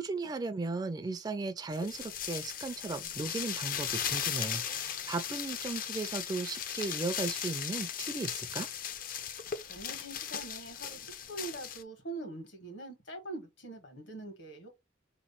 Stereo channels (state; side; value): normal; both; correlation 0.34